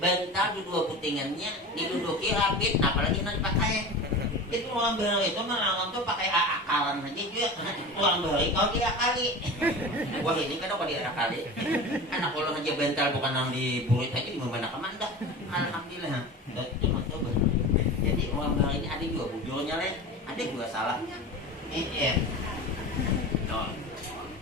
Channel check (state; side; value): normal; both; correlation 0.32